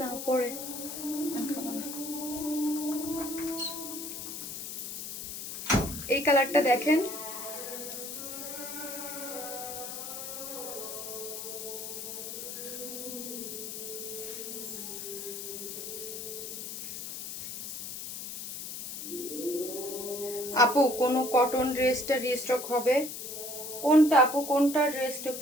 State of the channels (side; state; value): left; noise; hiss, 7 dB below the sound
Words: পরে খাবো না। এই কালারটা দেখেন, আপু কোন কটন ড্রেসটা রিস্টক হবে? কোনটা আপু, কোনটা রিস্টক